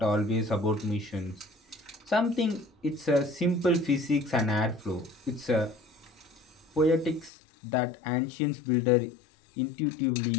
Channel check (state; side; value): drops out; right; at 7.3 s